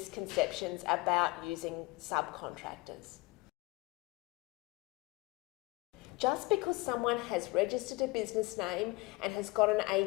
about using subcontractors. Just because someone has registered a business name and has got an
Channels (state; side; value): quieter; right; 22.8 dB